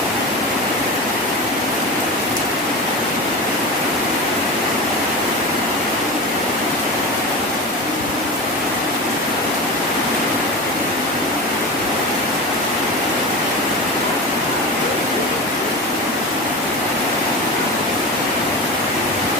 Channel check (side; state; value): both; normal; correlation 0.26